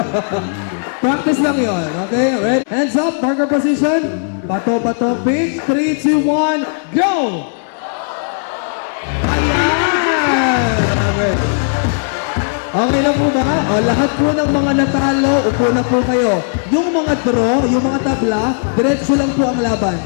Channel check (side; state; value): right; silent; 69 dB below the other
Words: Practice lang yon, okay? Ready? Hands up, marker position. Bato, pick. 3, 2, 1, go! Okay lang po ba? O, lahat po ng mga natalo, upo na po kayo. Yung mga draw, yung mga tabla, diretso lang po ang laban.